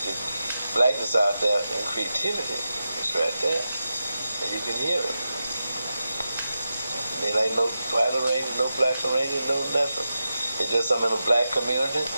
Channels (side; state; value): both; inverted; correlation -0.90